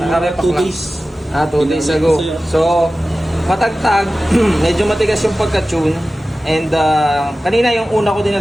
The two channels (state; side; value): normal; both; correlation 0.95